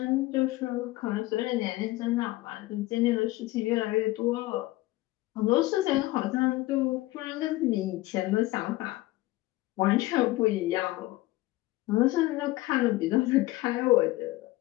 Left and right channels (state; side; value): quieter; right; 18.5 dB